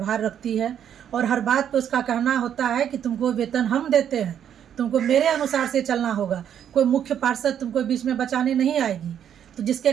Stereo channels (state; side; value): quieter; left; 9.3 dB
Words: रखती है और हर बात पे उसका कहना होता है कि तुमको वेतन हम देते हैं, तुमको मेरे अनुसार से चलना होगा, कोई मुख्य पार्षद तुमको बीच में बचाने नहीं आएगी। तो जिसके